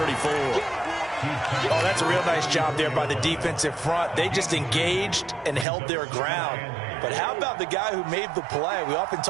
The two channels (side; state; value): left; drops out; at 5.7 s